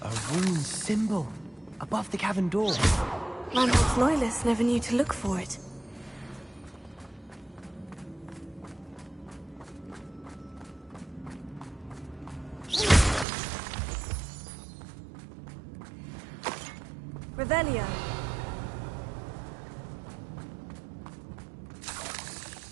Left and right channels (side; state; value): left; drops out; at 13.2 s